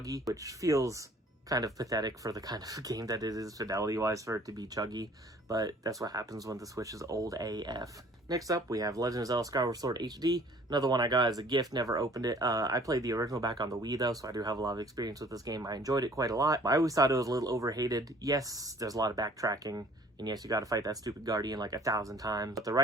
which feels kind of pathetic for the kind of game that it is fidelity-wise for it to be chuggy, but that's what happens when the Switch is old AF. Next up, we have Legend of Zelda Skyward Sword HD. Another one I got as a gift, never opened it. I played the original back on the Wii though, so I do have a lot of experience with this game. I enjoyed it quite a lot. I always thought it was a little overhated. Yes, there's a lot of backtracking, and yes, you gotta fight that stupid Guardian like 1,000 times. But the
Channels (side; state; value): both; normal; correlation 0.53